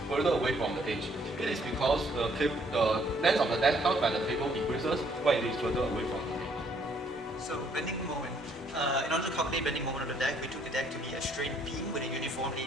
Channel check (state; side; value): normal; both; correlation 0.66